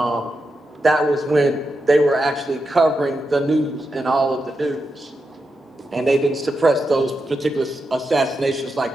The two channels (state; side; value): normal; both; correlation 0.87